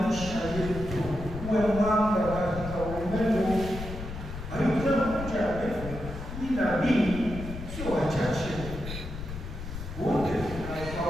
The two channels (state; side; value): noise; left; rumble, 9 dB below the sound